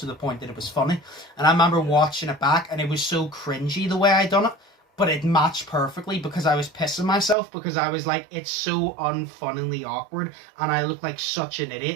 the point that it was funny. And I remember watching it back, and it was so cringy the way I done it, but it matched perfectly because I was pissing myself because I was like, it's so unfunnily awkward, and I look like such an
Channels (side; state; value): left; drops out; at 7.4 s